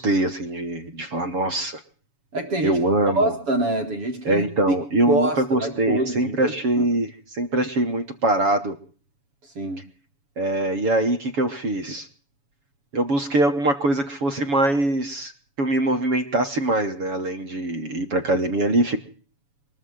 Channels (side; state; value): left; late; 7.1 ms